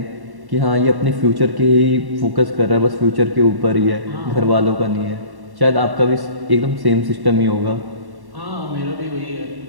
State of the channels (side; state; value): left; late; 1.1 ms